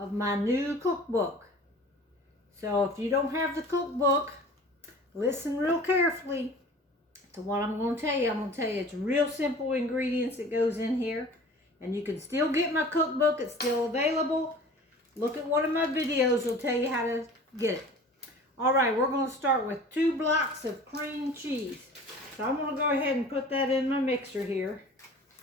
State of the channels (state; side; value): normal; both; correlation 0.43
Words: my new cookbook. So if you don't have the cookbook, listen real carefully to what I'm going to tell you. I'm going to tell you it's real simple ingredients that goes in here. And you can still get my cookbook. It's still available. Look at one of my videos. Will tell you how to get it. Alright, we're going to start with 2 blocks of cream cheese. So I'm going to go ahead and put that in my mixer here.